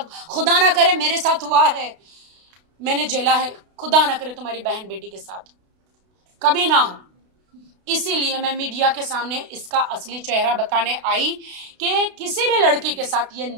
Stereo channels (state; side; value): late; left; 32 ms